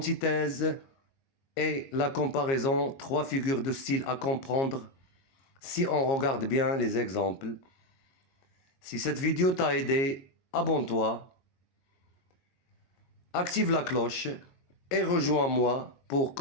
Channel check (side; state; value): right; late; 22 ms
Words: et la comparaison, trois figures de style à comprendre si on regarde bien les exemples. Si cette vidéo t'a aidé, abonne-toi, active la cloche et rejoins-moi pour